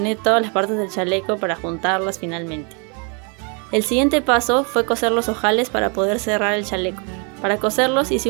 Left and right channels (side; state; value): left; quieter; 34.8 dB